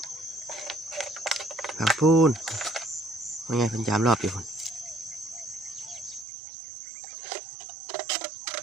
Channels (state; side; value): drops out; left; at 6.2 s